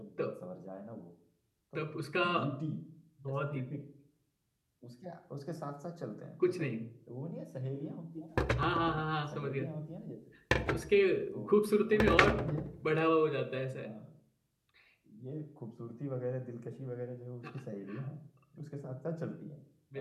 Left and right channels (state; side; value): identical; both; correlation 1.00